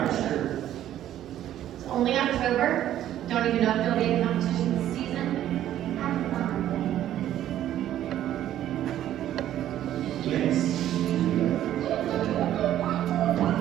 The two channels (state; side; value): quieter; left; 12.1 dB